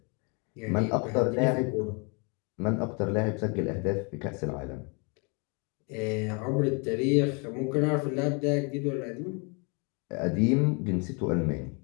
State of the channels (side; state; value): right; quieter; 33.6 dB